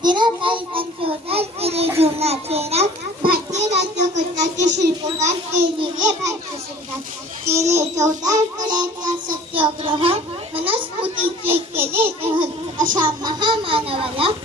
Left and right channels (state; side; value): normal; both; correlation 0.48